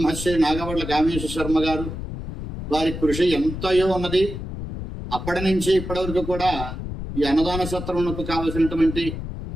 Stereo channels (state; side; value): noise; left; rumble, 7 dB below the sound